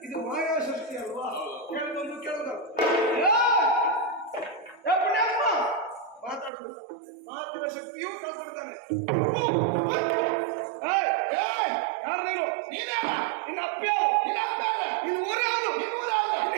ಇದು ಮಾಯಾ ಸೃಷ್ಟಿ ಅಲ್ವಾ? ಕೇಳದೊಂದು ಕೇಳದ ಮಾತಾಡುದು ಮಾತಿನ ಶಕ್ತಿಯೂ ಕಾಪಾಡ್ತಾನೆ. ಯಾರು ನೀನು? ನಿನ್ನ ಅಪ್ಪ ಯಾರು? ನಿನ್ನ ಊರು ಯಾವುದು? ನಿನ್ನ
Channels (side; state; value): left; drops out; at 6.5 s